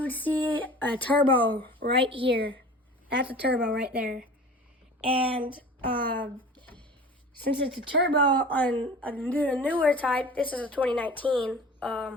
would see a turbo right here. That's a turbo right there. And since it's a turbo on a newer type, this is a 2019.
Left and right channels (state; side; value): normal; both; correlation 0.40